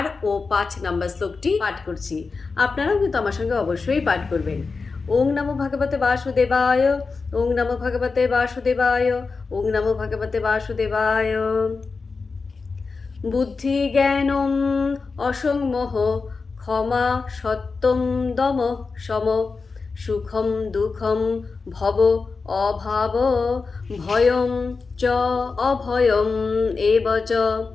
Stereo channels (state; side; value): quieter; right; 4.4 dB